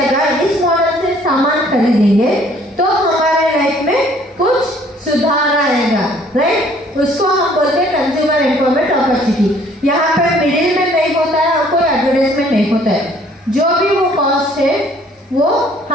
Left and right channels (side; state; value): both; normal; correlation 0.59